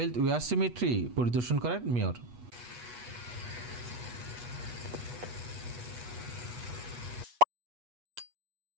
ওয়্যার সিমেট্রি পরিদর্শন করেন মেয়র।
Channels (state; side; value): late; left; 8.3 ms